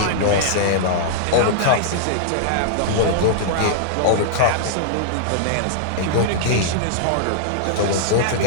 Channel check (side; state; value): both; different; correlation -0.02